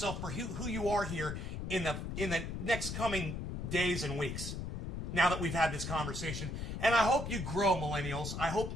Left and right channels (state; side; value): noise; left; rumble, 5 dB below the sound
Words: for who you are here in the next coming days and weeks, now that we've had this conversation. And I hope you grow, millennials. I hope